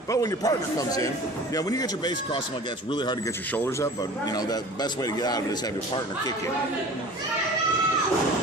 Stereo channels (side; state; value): both; normal; correlation 0.41